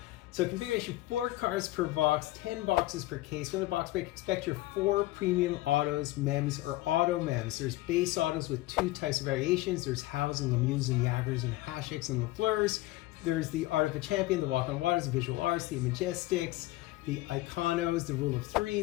So configuration, 4 cards per box, 10 boxes per case. From the box break, expect your 4 premium autos, mems, or auto mems. There's base autos with 2 types of variations. There's Hows and Lemieux and Jagers and Hashicks and Lafleurs. There's the Art of a Champion, the Walk on Waters, the Visual Arts, the Majestics, the Iconos, the Rule of 3,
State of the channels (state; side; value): quieter; right; 17.8 dB